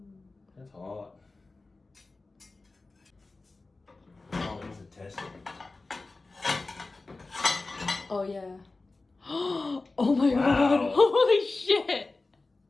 That's hot. Oh, these are tested. Oh yeah. Oh my Wow. God. Holy shit.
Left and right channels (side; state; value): right; quieter; 3.4 dB